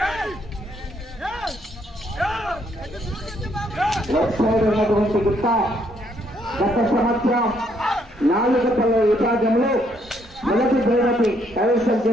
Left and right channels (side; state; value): both; normal; correlation 0.70